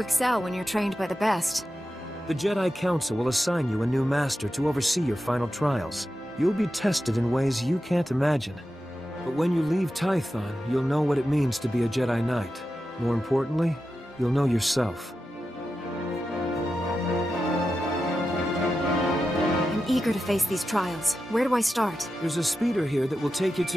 when you're trained by the best. The Jedi Council will assign you a new master to oversee your final trials. You'll be tested in ways you can't imagine. But when you leave Tython, you'll know what it means to be a Jedi Knight. More importantly, you'll know yourself. I'm eager to face these trials. Where do I start? There's a speeder here that will take you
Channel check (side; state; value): both; normal; correlation 0.90